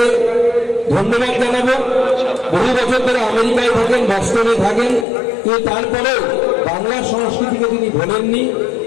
ধন্যবাদ জানাবো। বহু বছর ধরে আমেরিকায় থাকেন, বস্টনে থাকেন, কিন্তু তারপরেও বাংলার সংস্কৃতিকে তিনি ভোলেননি।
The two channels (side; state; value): right; drops out; at 5.1 s